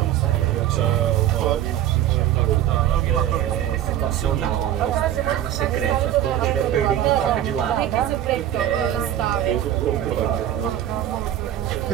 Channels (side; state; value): left; quieter; 11.9 dB